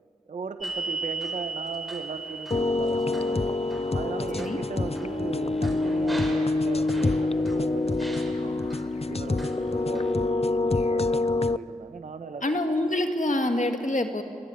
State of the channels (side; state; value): both; normal; correlation 0.79